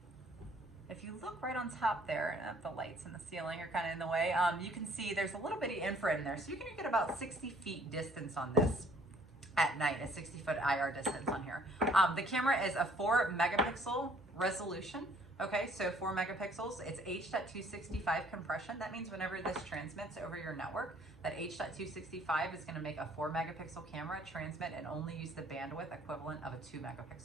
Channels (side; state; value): both; normal; correlation 0.60